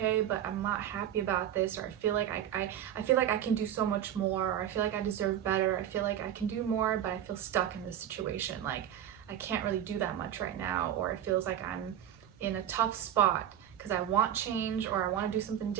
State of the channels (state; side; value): quieter; left; 10.5 dB